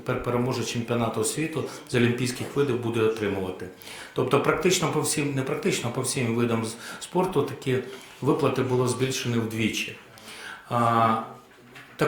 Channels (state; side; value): identical; both; correlation 1.00